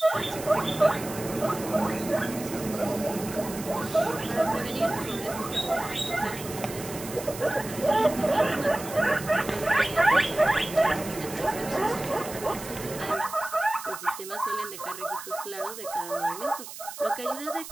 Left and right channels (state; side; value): noise; right; hiss, 12 dB below the sound